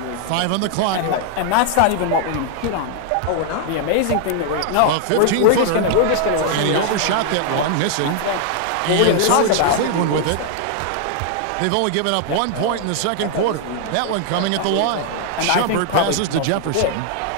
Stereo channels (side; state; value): both; different; correlation 0.00